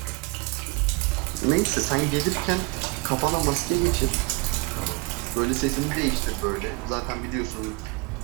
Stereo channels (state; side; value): quieter; left; 28.1 dB